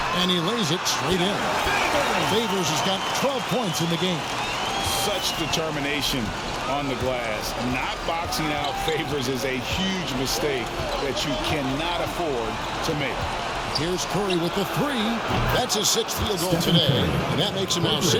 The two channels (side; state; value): both; identical; correlation 1.00